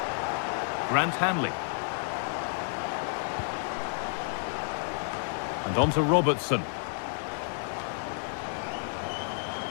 Grant Hanley. And on to Robertson.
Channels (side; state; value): right; silent; 58 dB below the other